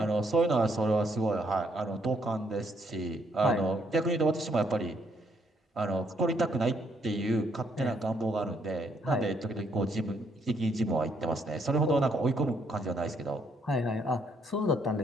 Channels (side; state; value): both; normal; correlation 0.71